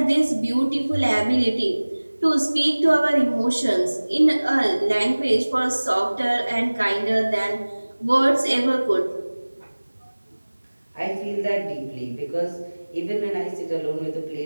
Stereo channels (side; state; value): both; inverted; correlation -1.00